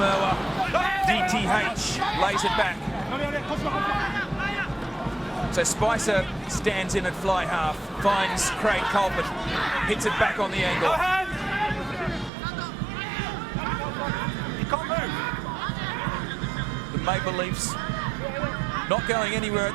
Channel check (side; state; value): left; drops out; at 12.3 s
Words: DTH lays it back. So Spicer stands in at fly half, finds Craig Colbert, hits it back on the angle. He can't move. The Maple Leafs not going anywhere